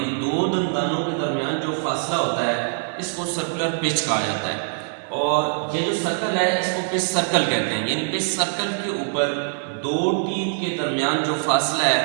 2 دندانوں کے درمیان جو فاصلہ ہوتا ہے اس کو سرکولر پیچ کہا جاتا ہے. اور یہ جو سرکل ہے اس کو پچ سرکل کہتے ہیں, یعنی پچ سرکل کے اوپر 2 ٹیتھ کے درمیان جو فاصلہ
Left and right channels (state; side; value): silent; left; digital silence